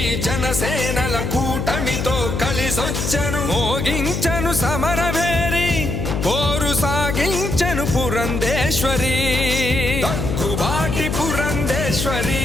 జనసేనల కూటమితో కలిసొచ్చను, మోగించను సమరభేరి పోరు సాగించను పురంధేశ్వరి. దగ్గుబాటి పురంధేశ్వరి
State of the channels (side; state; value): left; noise; hum, 2 dB below the sound